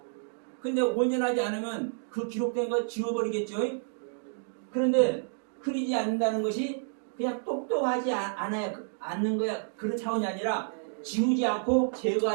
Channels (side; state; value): left; silent; digital silence